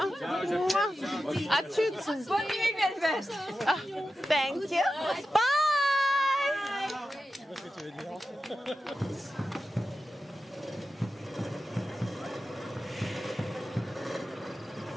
À toutes. Bonne nuit, Velvet. Thank you. Bye.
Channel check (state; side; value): normal; both; correlation 0.92